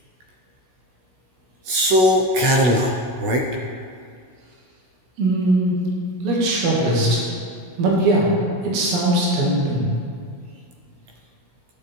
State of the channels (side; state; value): left; late; 16 ms